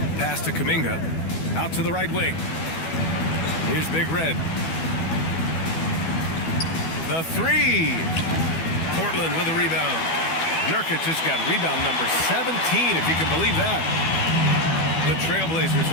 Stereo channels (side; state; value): right; late; 12 ms